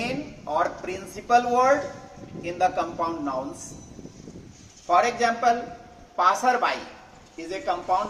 or principal word in the compound nouns. For example, passerby is a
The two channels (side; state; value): both; identical; correlation 1.00